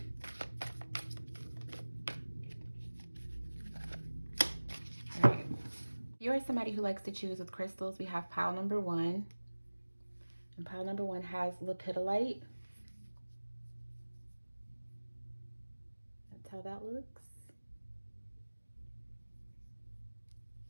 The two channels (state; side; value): inverted; both; correlation -1.00